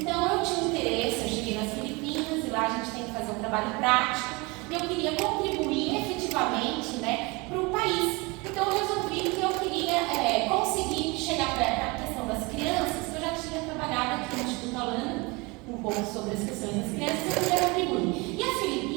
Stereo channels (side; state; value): left; quieter; 26.0 dB